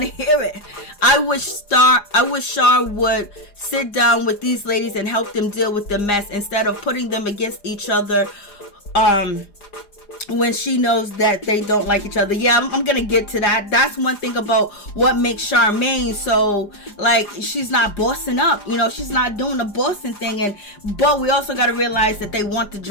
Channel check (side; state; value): right; late; 4.9 ms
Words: to hear it. I wish Shar would sit down with these ladies and help them deal with the mess instead of putting them against each other. When she knows that they don't like each other. Yeah, I'm gonna get to that. That's one thing about what makes Charmaine so, like, she's not bossing up. You know, she's not doing the bossing thing. But we also gotta realize that they want the